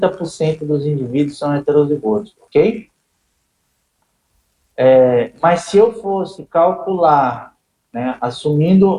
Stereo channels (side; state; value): both; identical; correlation 1.00